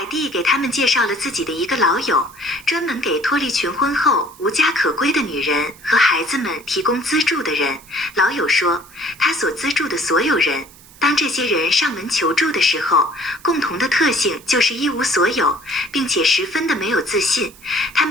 蒂给他们介绍了自己的一个老友，专门给脱离群婚后无家可归的女人和孩子们提供资助的人。老友说，他所资助的所有人，当这些人上门求助的时候，共同的特性就是一无所有，并且十分的没有自信。他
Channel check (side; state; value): right; noise; hiss, 23 dB below the sound